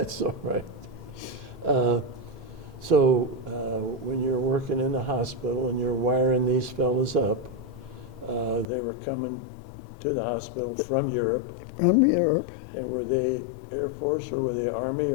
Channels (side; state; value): right; drops out; at 8.7 s